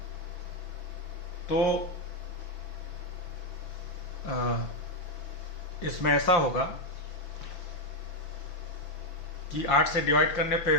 तो इसमें ऐसा होगा कि 8 से डिवाइड करने पे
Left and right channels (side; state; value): right; late; 6.0 ms